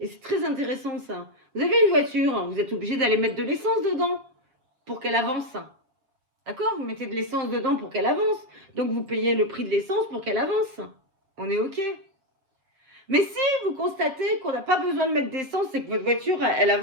Et c'est très intéressant ça. Vous avez une voiture, vous êtes obligé d'aller mettre de l'essence dedans pour qu'elle avance. D'accord? Vous mettez de l'essence dedans pour qu'elle avance. Donc vous payez le prix de l'essence pour qu'elle avance. On est OK. Mais si vous constatez qu'on n'a pas besoin de mettre d'essence et que votre voiture, elle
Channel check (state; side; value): late; left; 7.6 ms